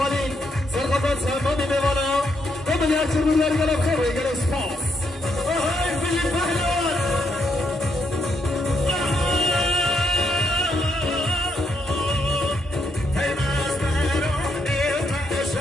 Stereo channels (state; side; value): normal; both; correlation 0.77